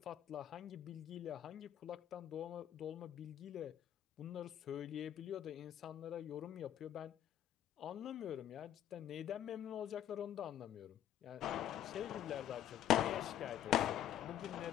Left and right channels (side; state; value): right; quieter; 11.1 dB